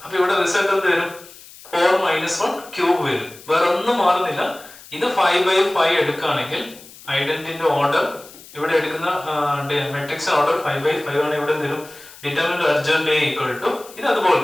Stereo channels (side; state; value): left; noise; hiss, 20 dB below the sound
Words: അപ്പൊ ഇവിടെ റിസൾട്ട് എന്ത് വരും? 4 - 1 ക്യൂബ് വരും. വേറെ ഒന്നും മാറുന്നില്ല. ഇത് 5/5 എടുക്കുകയാണെങ്കിൽ ഐഡന്റിറ്റിന്റെ ഓർഡർ ഇവിടെ എടുക്കുന്ന മെട്രിക്സ് ഓർഡർ 5/5 ആണ്. ഇവിടെ എന്തെങ്കിലും determinant adjoint A equal to ഇത് അതുപോലെ